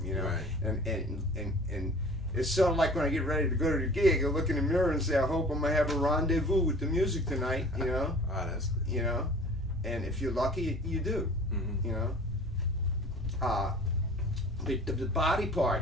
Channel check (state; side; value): normal; both; correlation 0.45